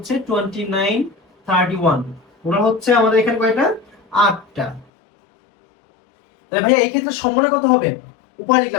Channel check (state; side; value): drops out; right; at 4.9 s